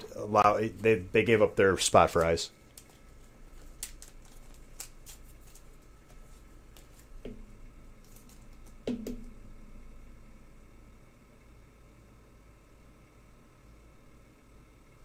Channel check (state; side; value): identical; both; correlation 1.00